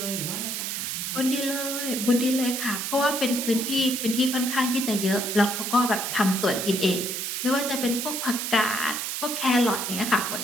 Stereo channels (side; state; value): right; noise; hiss, 3 dB below the sound